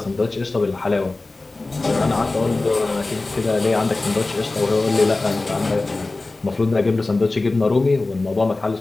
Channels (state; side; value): quieter; right; 3.2 dB